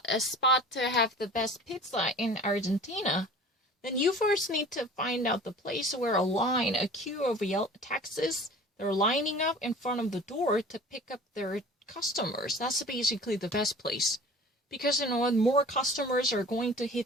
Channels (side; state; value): both; normal; correlation 0.43